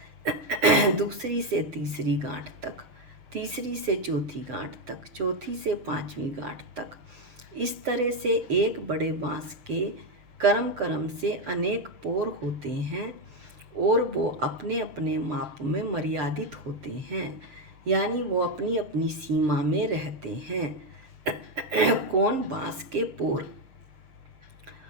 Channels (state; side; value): late; left; 7.2 ms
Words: दूसरी से तीसरी गांठ तक, तीसरी से चौथी गांठ तक, चौथी से पांचवी गांठ तक। इस तरह से एक बड़े बांस के कर्म से अनेक पोर होते हैं और वो अपने अपने माप में मर्यादित होते हैं, यानी वो अपनी अपनी सीमा में रहते हैं कौन? बांस के पोर।